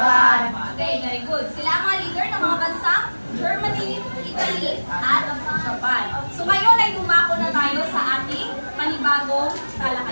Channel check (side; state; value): both; inverted; correlation -1.00